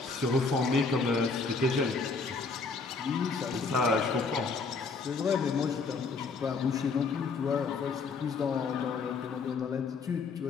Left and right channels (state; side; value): quieter; right; 4.4 dB